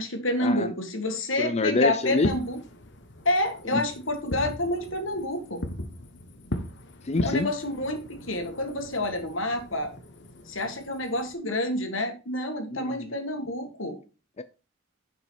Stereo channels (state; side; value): normal; both; correlation -0.03